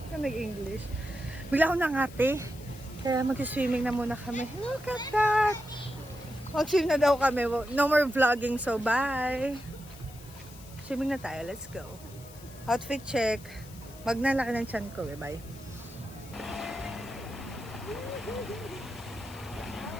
ka nag-English. Bigla ako nangati. Kaya mag-swimming na muna kami. Look at that! Mag-swim na daw kami. No more vlogging, so bye! Swimming na tayo, let's go. Outfit check. Magnalaki ng tiyan ko, bye.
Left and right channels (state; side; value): noise; left; hiss, 20 dB below the sound